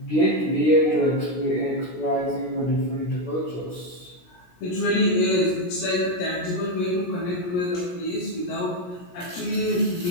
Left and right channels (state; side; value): late; right; 17 ms